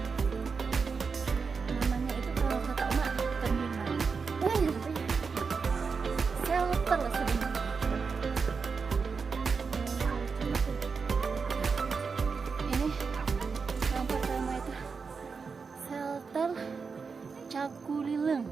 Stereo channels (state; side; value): quieter; left; 5.2 dB